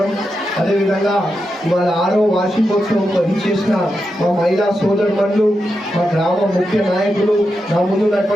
అదేవిధంగా వాళ్ళ 6వ వార్షికోత్సవం ఇచ్చేసిన మా మహిళా సోదరులు, మా గ్రామ ముఖ్య నాయకులు, నా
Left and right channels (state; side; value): normal; both; correlation 0.87